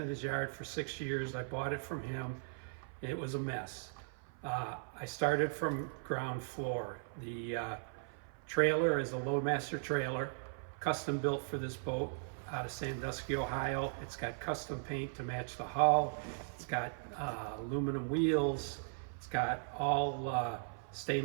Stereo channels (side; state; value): left; silent; 52 dB below the other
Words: his yard for 6 years. I bought it from him. It was a mess. I started from ground floor. The trailer is a Loadmaster trailer, custom built for this boat out of Sandusky, Ohio. It's got custom paint to match the hull. It's got aluminum wheels. It's got all